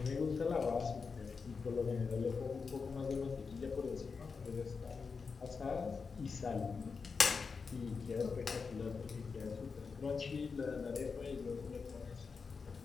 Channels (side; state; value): right; quieter; 5.1 dB